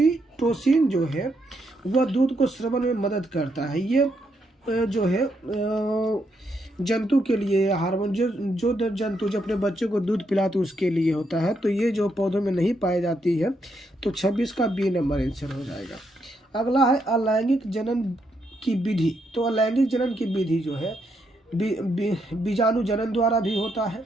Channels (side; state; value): both; normal; correlation 0.78